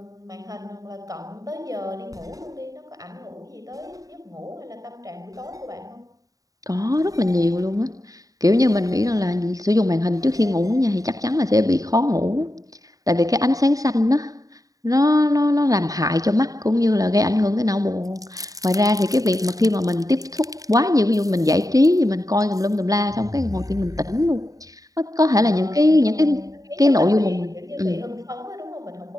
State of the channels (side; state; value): left; late; 0.17 ms